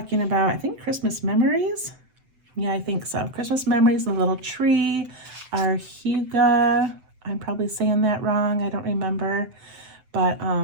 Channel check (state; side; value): late; left; 7.8 ms